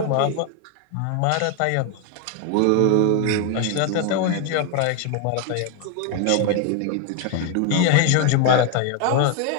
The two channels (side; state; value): both; different; correlation 0.01